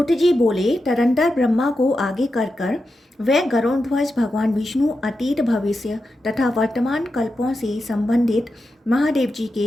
जी बोले, तदंतर ब्रह्मा को आगे कर वह गरुड़ध्वज भगवान विष्णु अतीत भविष्य तथा वर्तमान कल्पों से संबंधित महादेव जी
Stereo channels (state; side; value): normal; both; correlation 0.89